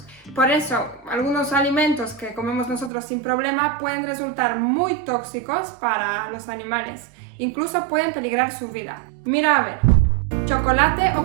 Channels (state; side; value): drops out; left; at 2.9 s